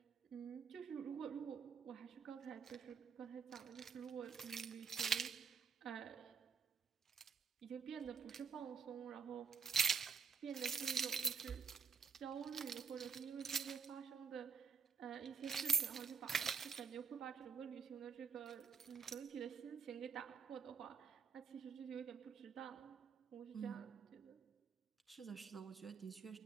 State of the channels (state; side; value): quieter; left; 5.9 dB